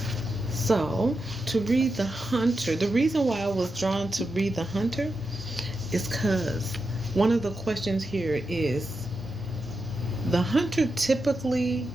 So, to read the hunter, the reason why I was drawn to read the hunter is because one of the questions here is, the hunter typically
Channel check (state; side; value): normal; both; correlation 0.88